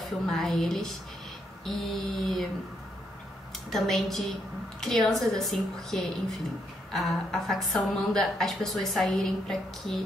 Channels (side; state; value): both; normal; correlation 0.75